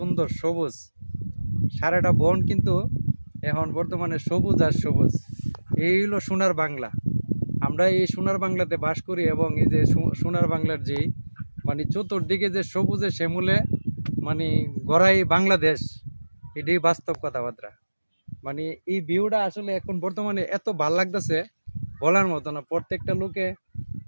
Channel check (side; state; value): both; inverted; correlation -1.00